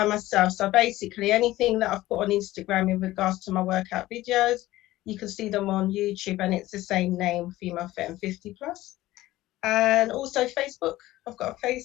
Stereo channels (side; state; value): right; quieter; 16.5 dB